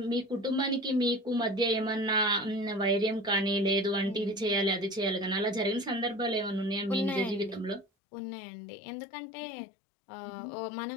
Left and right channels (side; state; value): right; drops out; at 7.9 s